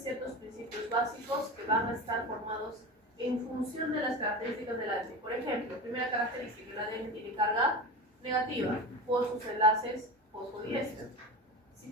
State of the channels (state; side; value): normal; both; correlation 0.27